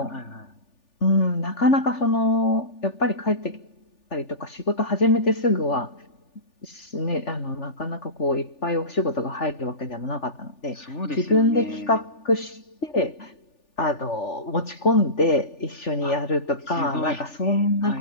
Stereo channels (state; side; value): late; right; 3.4 ms